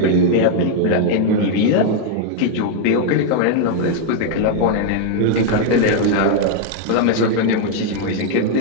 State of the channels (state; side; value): different; both; correlation 0.00